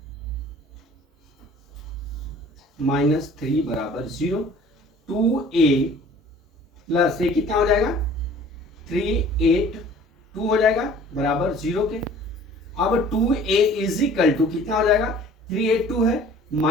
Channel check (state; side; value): normal; both; correlation 0.50